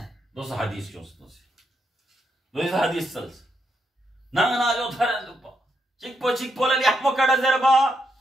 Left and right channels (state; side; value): normal; both; correlation 0.80